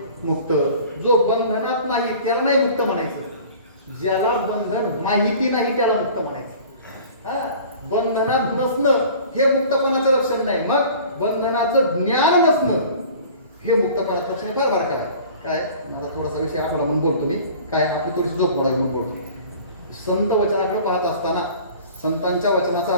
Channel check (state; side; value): inverted; both; correlation -0.45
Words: मुक्त. जो बंधनात नाही त्याला नाही मुक्त म्हणायचं. ज्याला बंधन माहिती नाही त्याला मुक्त म्हणायचं. हा, बंधनात नसणं हे मुक्तपणाचं लक्षण नाही. मग बंधनाचं ज्ञान नसणं हे मुक्तपणाचं लक्षण फार बारका आहे. काय माझा थोडासा विषय आठवला म्हणून बोलतो मी. काय आपली थोडीशी झोप मोडावी म्हणून बोलतो. संत वचनाकडे पाहत असताना, संतांच्या वचनाचा